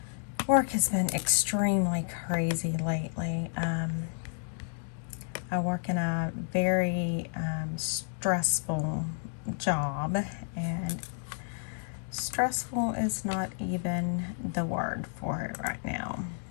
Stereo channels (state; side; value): silent; right; digital silence